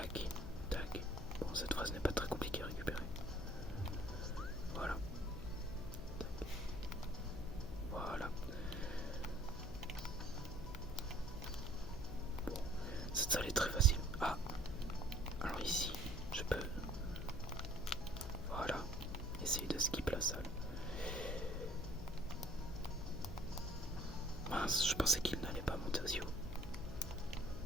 tac. Bon, cette phrase n'est pas très compliquée à récupérer. Voilà. Tac. Voilà. Bon, cette salle est très facile. Ah, alors ici, je peux... Voilà. Essayer de skip la salle. Mince, je pensais qu'il n'allait pas monter aussi haut.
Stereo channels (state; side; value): noise; left; hum, 11 dB below the sound